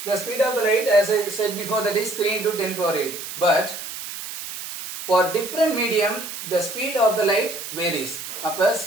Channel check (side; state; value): right; noise; hiss, 9 dB below the sound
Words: the speed of the light, as I said before, that is 3 into 10 power 8. But for different medium, the speed of the light varies. அப்ப